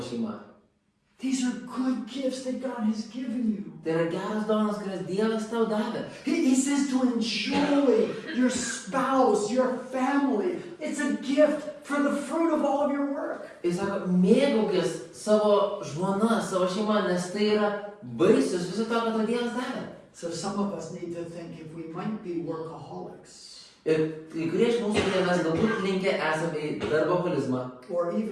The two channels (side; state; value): both; identical; correlation 1.00